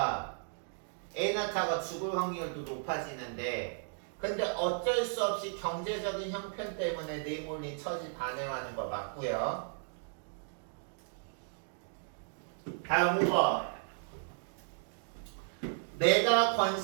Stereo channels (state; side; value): silent; left; digital silence